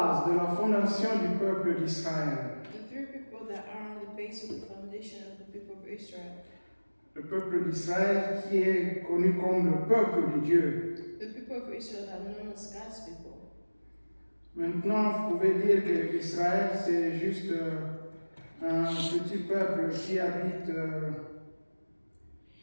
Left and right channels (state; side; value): inverted; both; correlation -1.00